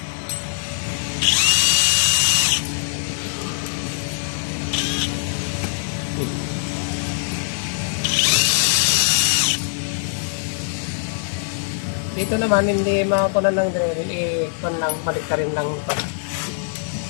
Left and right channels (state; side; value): silent; right; digital silence